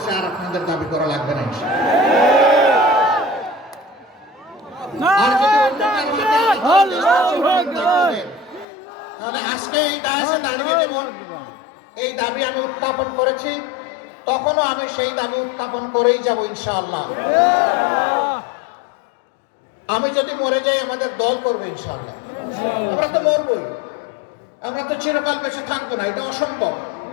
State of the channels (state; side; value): drops out; right; at 8.7 s